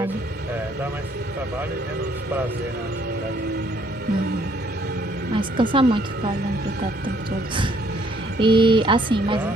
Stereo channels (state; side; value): normal; both; correlation 0.65